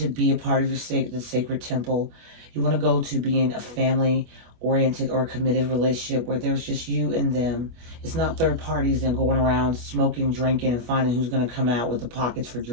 be a part of the sacred temple. You want to go to being a family-oriented or committed relationship where there's just you and them. It's not third parties and going around smoking, drinking, and finding who's going to come out with the pockets for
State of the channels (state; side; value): late; left; 25 ms